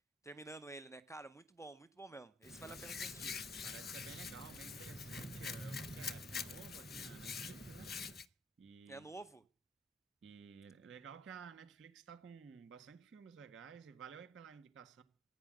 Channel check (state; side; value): normal; both; correlation 0.64